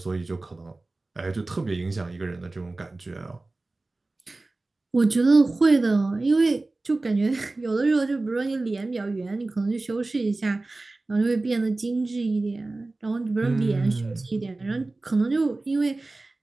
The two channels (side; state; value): left; quieter; 3.1 dB